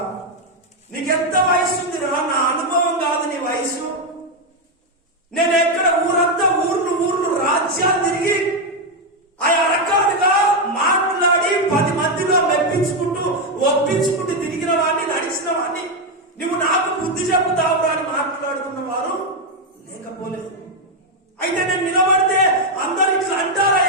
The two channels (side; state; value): both; normal; correlation 0.04